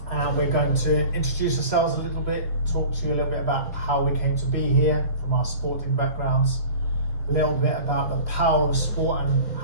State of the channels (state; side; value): inverted; both; correlation -0.41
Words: And we're going to introduce ourselves a little bit, talk to you a little bit about how we came to be here from our sporting backgrounds, a little bit about the power of sport and